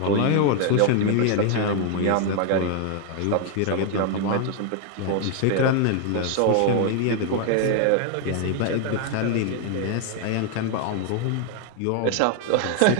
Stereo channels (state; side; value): different; both; correlation 0.00